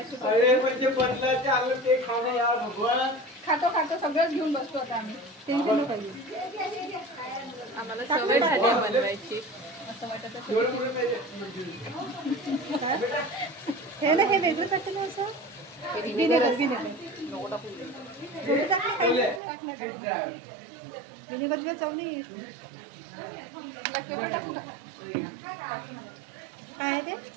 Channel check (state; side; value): drops out; left; at 19.4 s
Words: अरे म्हणजे बदलाचे आलं ते खाणं यार भगवान खातो सगळंच घेऊन बसतो आता आम्ही टेन्शन नको पाहिजे आम्हाला सवय झाली आहे बनवायची असं वाटत विनेगर हे ना हे वेगळं टाकलं ना असं विनेगर विनेगर चव नाही काय आहे ते